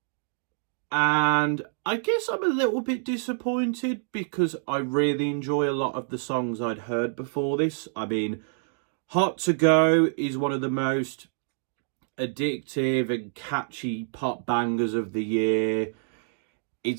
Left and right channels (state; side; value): silent; left; digital silence